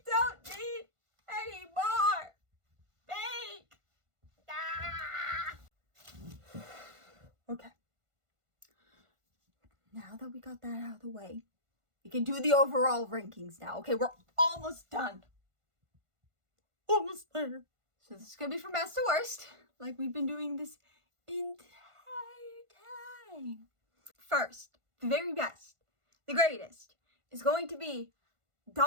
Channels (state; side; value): late; left; 1.5 ms